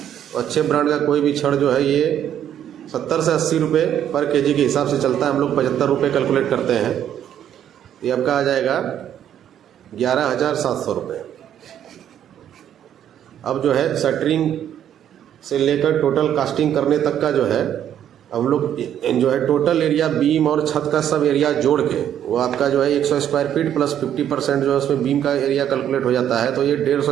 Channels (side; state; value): left; quieter; 10.1 dB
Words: अच्छे ब्रांड का कोई भी छड़ जो है ये 70 से 80 रुपये पर kg के हिसाब से चलता है। हम लोग 75 रुपये कैलकुलेट करते हैं। ये आपका आ जाएगा 11,700 रुपये। अब जो है शटरिंग से लेकर टोटल कास्टिंग करने तक का जो है हम लोग जो है टोटल एरिया बीम और छत का सब एरिया जोड़ के वो आपका जो है 100 स्क्वायर फीट प्लस 50% जो है उसमें बीम का एरिया कैलकुलेट हो जाता है। तो ये